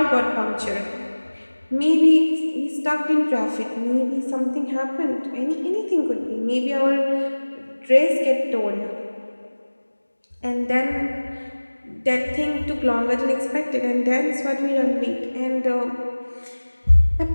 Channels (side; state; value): both; inverted; correlation -1.00